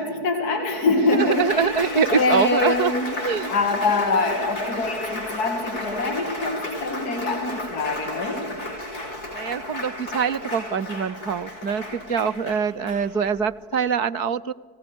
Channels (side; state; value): right; late; 4.6 ms